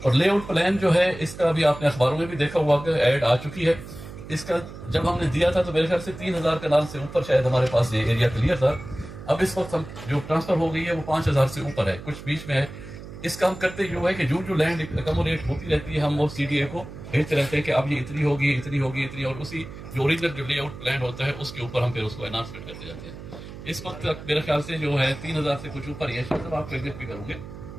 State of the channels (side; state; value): right; noise; hum, 13 dB below the sound